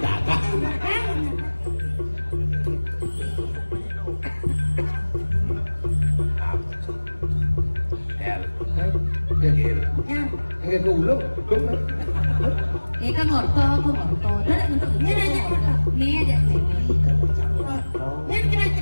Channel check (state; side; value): inverted; both; correlation -1.00